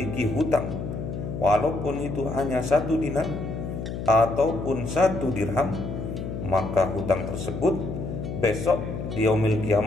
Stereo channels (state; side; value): noise; left; hum, 6 dB below the sound